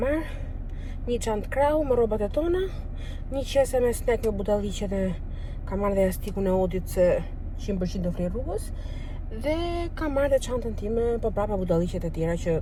marrë, një çantë krau me rrobat e tona, një qese me snack me budalliqe dhe kam marrë dhe jastikun e Odit se 100% do fli rrugës, dhe kam marrë dhe çantën time, po prapa budalliqet e tjera që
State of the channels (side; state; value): both; identical; correlation 1.00